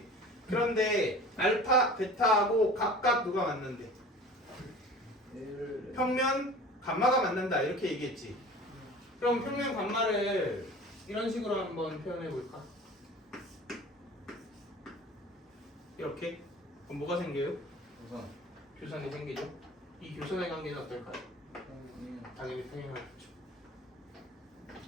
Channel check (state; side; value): normal; both; correlation 0.41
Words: 그런데 알파 베타하고 각각 누가 만난대? 평면 감마가 만난다 이렇게 얘기했지. 그럼 평면 감마를 이런 식으로 한번 표현해 볼까? 이렇게. 그럼 뭐가 생겨요? 우선 교선이 생기죠. 이 교선의 관계는 어떨까요? 당연히 평행하겠죠.